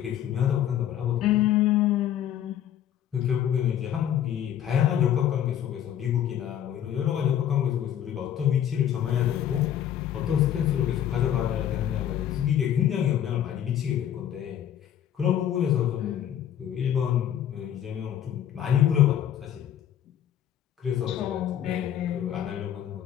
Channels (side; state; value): right; quieter; 10.5 dB